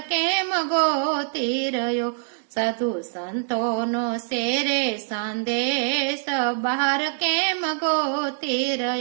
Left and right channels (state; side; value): silent; left; digital silence